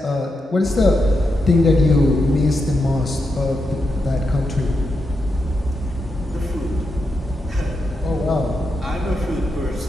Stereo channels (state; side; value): normal; both; correlation 0.85